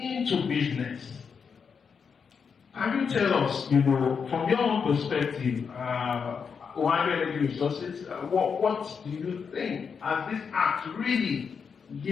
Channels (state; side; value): quieter; right; 6.2 dB